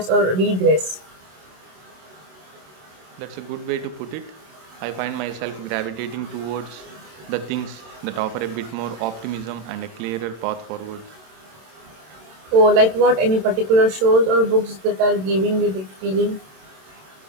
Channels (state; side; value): late; left; 27 ms